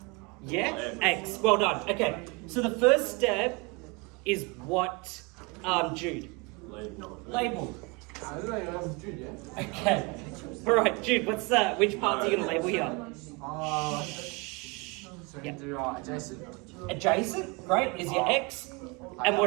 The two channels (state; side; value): quieter; left; 28.2 dB